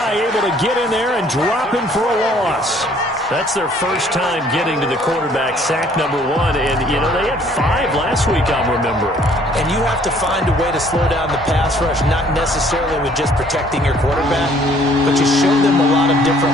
able to get in there and drop him for a loss. That's their first time getting to the quarterback, sack number 1. And, you know, they had 5 last week, I'm remembering. And you have to find a way to slow down the pass rush, not necessarily with just protecting your quarterback, but you show them a lot of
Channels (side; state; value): both; normal; correlation 0.59